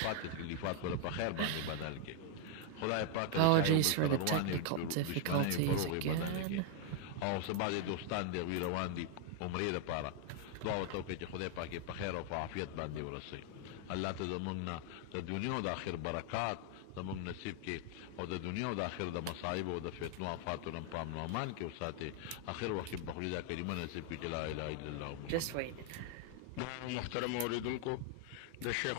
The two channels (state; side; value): different; both; correlation 0.00